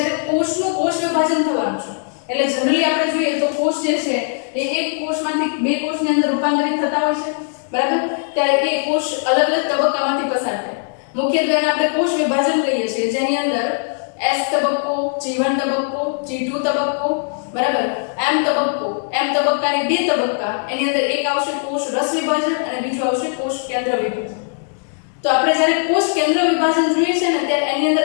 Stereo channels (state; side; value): silent; right; digital silence